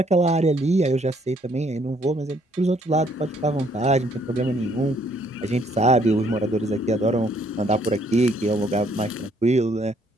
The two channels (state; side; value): normal; both; correlation 0.66